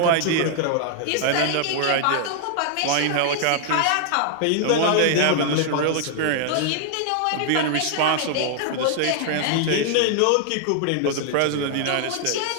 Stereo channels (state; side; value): different; both; correlation -0.01